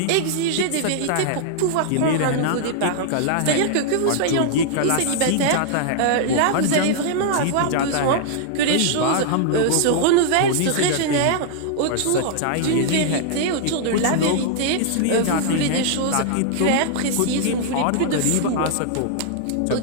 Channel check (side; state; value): both; different; correlation -0.01